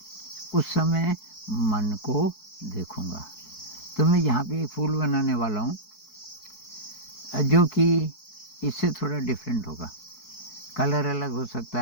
उस समय मन को देखूँगा। तो मैं यहाँ पे एक फूल बनाने वाला हूँ जो कि इससे थोड़ा डिफरेंट होगा। कलर अलग हो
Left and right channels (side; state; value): right; late; 4.6 ms